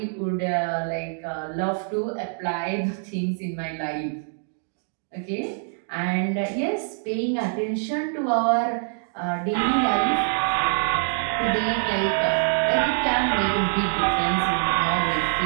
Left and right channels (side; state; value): left; silent; 62 dB below the other